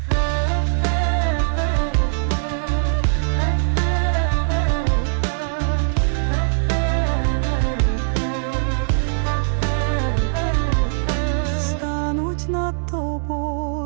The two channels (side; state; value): left; silent; 62 dB below the other